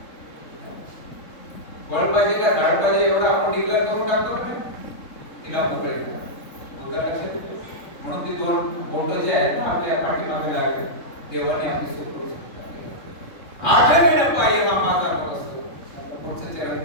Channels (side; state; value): right; late; 3.7 ms